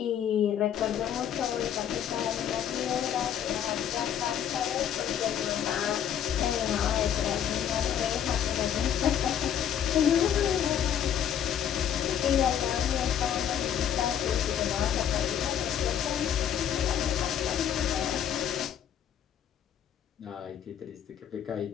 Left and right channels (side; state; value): right; quieter; 9.5 dB